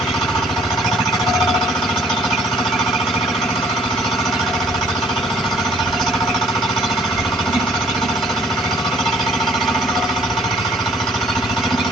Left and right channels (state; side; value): normal; both; correlation 0.60